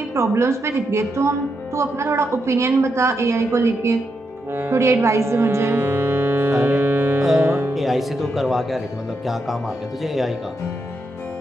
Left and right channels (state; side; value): normal; both; correlation 0.83